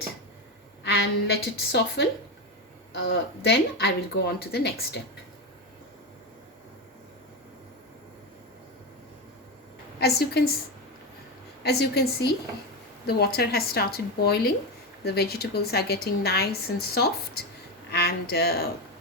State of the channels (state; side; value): normal; both; correlation 0.15